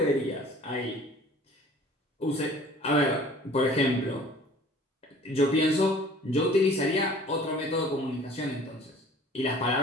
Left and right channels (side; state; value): both; normal; correlation 0.49